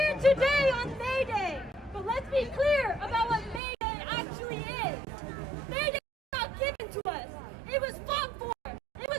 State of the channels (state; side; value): drops out; left; at 3.6 s